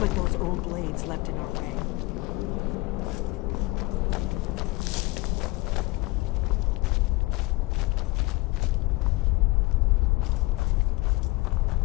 like those old blades left in our way.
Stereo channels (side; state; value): right; quieter; 22.1 dB